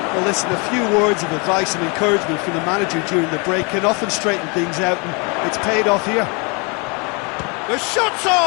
Well, listen, a few words of advice and encouragement from the manager during the break can often straighten things out, and it's paid off here. The shot's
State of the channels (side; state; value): right; quieter; 31.7 dB